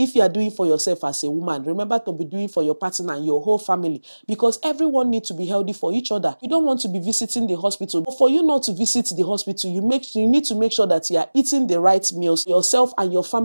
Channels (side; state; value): both; inverted; correlation -1.00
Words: you are doing for yourself as a woman, remember to be doing for your partner and your whole family, because everyone needs to be healthy for each other. You don't want to be visiting the hospital, but for you not to visit the hospital, you need to make sure that you are eating the right meals. Yourself and your